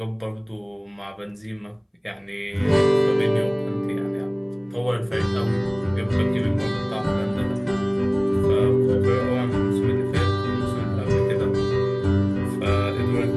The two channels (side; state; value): both; identical; correlation 1.00